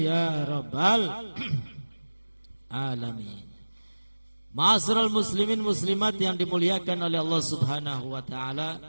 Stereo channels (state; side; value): inverted; both; correlation -1.00